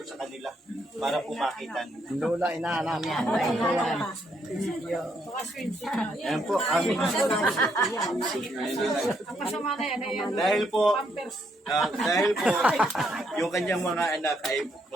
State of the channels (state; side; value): normal; both; correlation 0.74